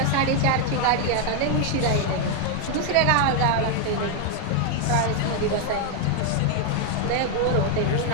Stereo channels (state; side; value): different; both; correlation 0.01